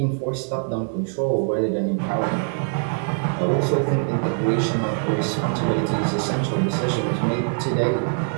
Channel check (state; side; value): silent; left; 63 dB below the other